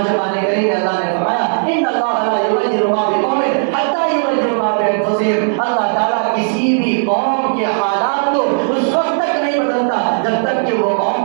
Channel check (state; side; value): silent; left; digital silence